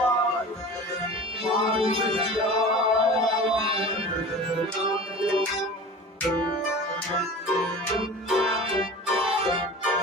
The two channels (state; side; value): normal; both; correlation 0.37